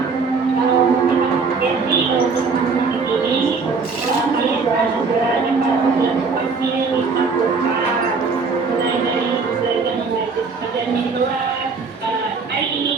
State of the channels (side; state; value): left; quieter; 4.7 dB